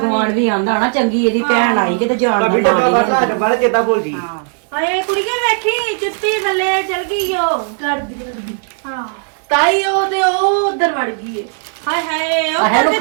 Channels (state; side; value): silent; left; 57 dB below the other